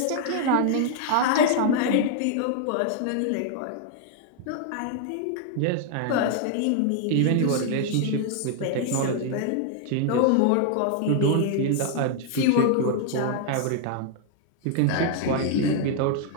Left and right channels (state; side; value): different; both; correlation 0.00